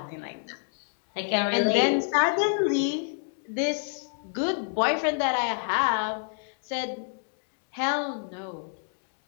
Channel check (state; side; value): silent; right; digital silence